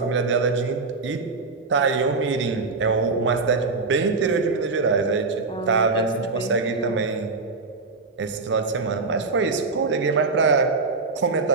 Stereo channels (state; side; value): quieter; left; 4.0 dB